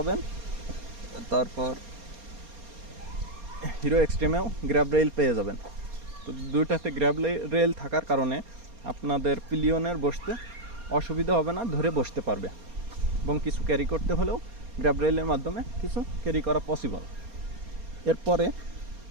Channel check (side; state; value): left; late; 4.3 ms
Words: তারপর হিরো এক্সট্রিমেও গ্র্যাব রেল পেয়ে যাবেন। তো দুইটাতে গ্র্যাব রেল থাকার কারণে আপনাদের পিলিয়নের বসতে অসুবিধা হবে না, ধরে বসতে পারবে, এবং কিছু ক্যারি করতে হলেও গ্র্যাব রেলের মাধ্যমে কিছু ক্যারি করা পসিবল। এরপরে